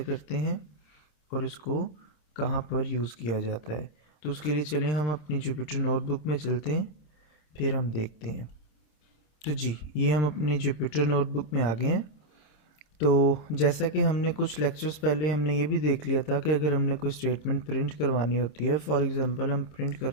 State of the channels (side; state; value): right; late; 27 ms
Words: करते हैं और इसको कहाँ पर यूज़ किया जाता है। तो उसके लिए चलें हम अपनी जुपिटर नोटबुक में चलते हैं, फिर हम देखते हैं। तो जी, ये हम अपनी जुपिटर नोटबुक में आ गए हैं। तो जैसा कि हमने कुछ लेक्चर्स पहले हमने ये भी देख लिया था कि अगर हमने कोई स्टेटमेंट प्रिंट करवानी होती है, फॉर एग्जांपल हम प्रिंट